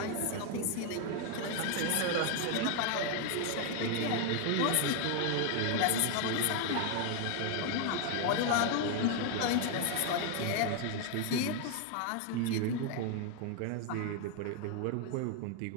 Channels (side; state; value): both; different; correlation 0.00